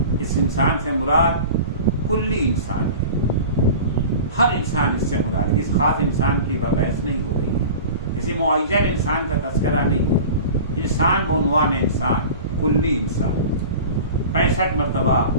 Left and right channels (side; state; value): both; inverted; correlation -0.37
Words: اس انسان سے مراد کلی انسان ہے، ہر انسان اس سے مراد ہے، اس خاص انسان کی بحث نہیں ہو رہی ہے، کسی معین انسان کا تذکرہ نہیں ہے، انسان بعنوان انسان، کلی انسان۔ 65 مرتبہ